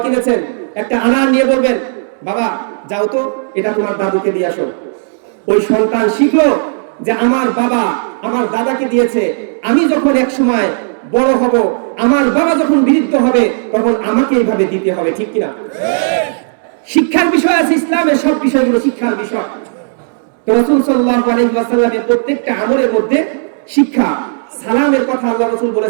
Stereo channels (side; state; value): left; silent; digital silence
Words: কিনেছেন, একটা আনার নিয়ে বলবেন, বাবা যাও তো এটা তোমার দাদুকে দিয়ে আসো। ওই সন্তান শিখলো যে আমার বাবা আমার দাদাকে দিয়েছে, আমি যখন এক সময় বড় হব, আমার বাবা যখন বৃদ্ধ হবে, তখন আমাকে এইভাবে দিতে হবে, ঠিক কিনা? শিক্ষার বিষয় আছে, ইসলামের সব বিষয়গুলো শিক্ষার বিষয়। তো রাসূল সাল্লাল্লাহু আলাইহি ওয়াসাল্লামের প্রত্যেকটা আমলের মধ্যে শিক্ষা। সালামের কথা আল্লাহ রাসূল